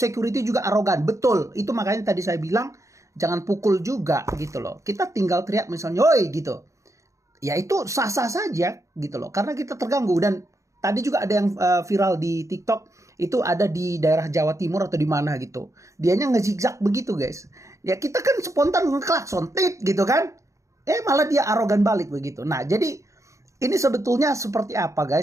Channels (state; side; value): late; left; 0.15 ms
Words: juga arogan. Betul. Itu makanya tadi saya bilang. Jangan pukul juga gitu loh. Kita tinggal teriak misalnya. Woi gitu. Ya itu sah-sah saja gitu loh. Karena kita terganggu. Dan tadi juga ada yang viral di TikTok. Itu ada di daerah Jawa Timur atau di mana gitu. Dianya ngezigzag begitu guys. Ya kita kan spontan ngeklakson. Tit gitu kan. Malah dia arogan balik begitu. Nah, jadi ini sebetulnya seperti apa